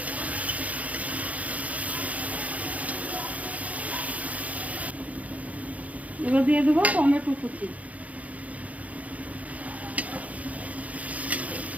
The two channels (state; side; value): late; left; 0.070 ms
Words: এবার দিয়ে দেবো টমেটো কুচি।